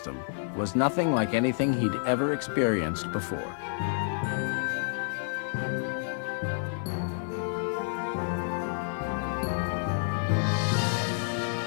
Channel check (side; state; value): right; silent; 58 dB below the other